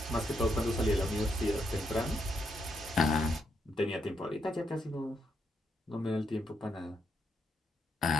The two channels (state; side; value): normal; both; correlation 0.78